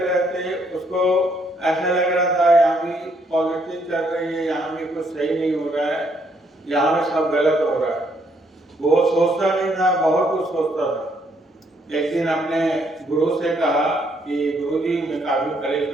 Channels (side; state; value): both; normal; correlation 0.71